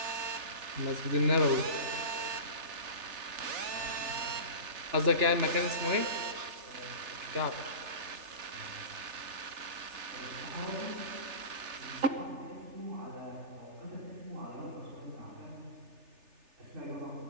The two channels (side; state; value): left; late; 3.4 ms